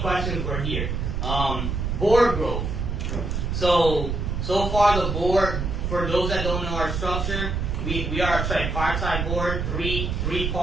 questions we're here. Board growth. So far the board, for those that don't know our structure, we are a tripartite board, three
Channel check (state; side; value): noise; right; rumble, 2 dB below the sound